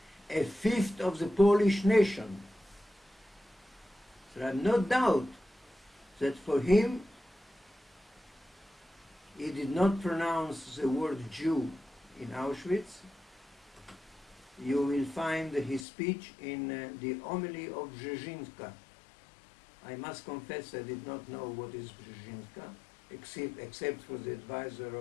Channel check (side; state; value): right; drops out; at 15.9 s